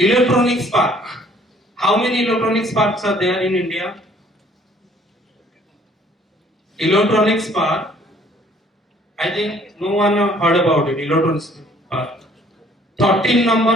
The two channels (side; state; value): both; normal; correlation 0.59